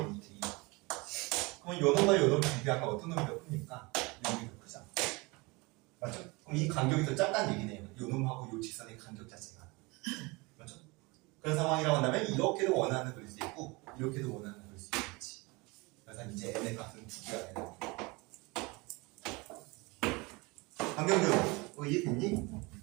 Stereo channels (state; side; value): quieter; left; 25.6 dB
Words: 루트 2. 그럼 요 놈과 요 놈을 비교하면 어떤 놈이 더 크니까 요 놈이 더 크죠. 맞죠? 그럼 이 간격이 더 작다는 얘기네요. 요 놈하고 요 직선의 간격 자체가. 맞죠? 그런 상황이라고 한다면 이렇게도 원하는 그릴 수 있고 이렇게도 원하는 그릴 수 있겠지. 그래서 이제 n의 값은 두 개가 되는 거예요. 강경준, 이해됐니?